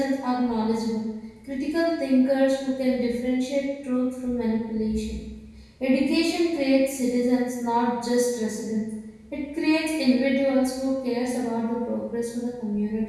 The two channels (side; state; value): both; identical; correlation 1.00